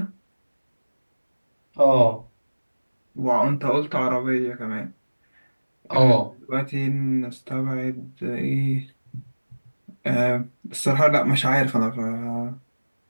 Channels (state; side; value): inverted; both; correlation -1.00